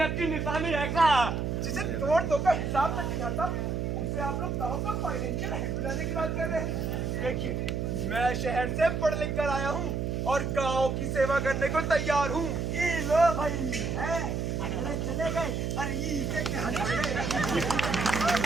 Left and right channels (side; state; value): right; noise; hum, 1 dB below the sound